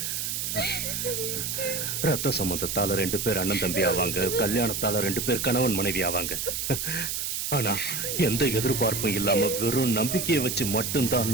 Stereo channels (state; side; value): noise; right; hiss, 2 dB below the sound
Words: ரத்த சம்பந்தத்தால 2 பேர் அண்ணன் தம்பி ஆவாங்க, கல்யாணத்தால 2 பேர் கணவன் மனைவி ஆவாங்க. ஆனா எந்த எதிர்பார்ப்பும் இல்லாம வெறும் நம்பிக்கையை வச்சு